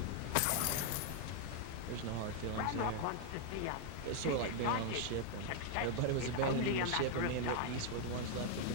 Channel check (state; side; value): different; both; correlation 0.00